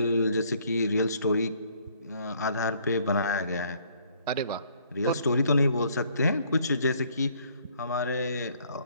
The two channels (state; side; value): inverted; both; correlation -0.63